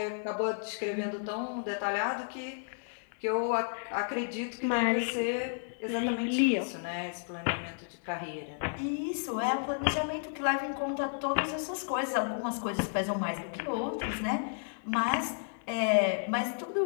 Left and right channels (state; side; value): silent; right; digital silence